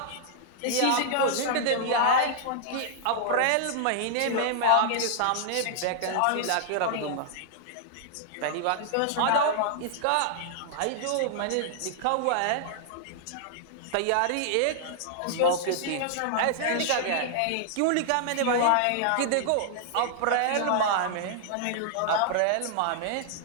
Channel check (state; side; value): different; both; correlation -0.01